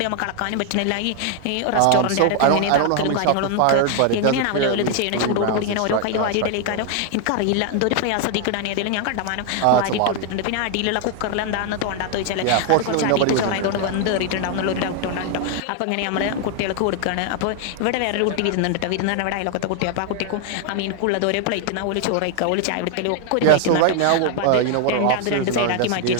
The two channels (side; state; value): both; different; correlation 0.00